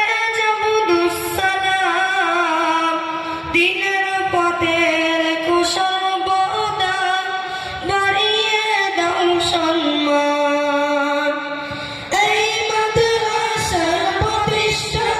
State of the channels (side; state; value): both; identical; correlation 1.00